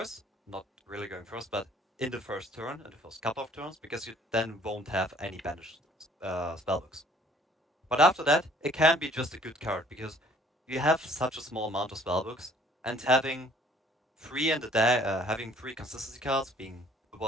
not really going first, but in the first turn, in the first couple of turns, because you then won't have any banished spellbooks. But after that, it can be just a good card because you have such a small amount of spellbooks, and having 3 consistency cards, being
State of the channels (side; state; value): both; normal; correlation 0.57